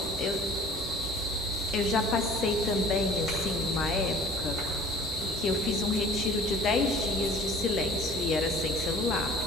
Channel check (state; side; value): normal; both; correlation 0.47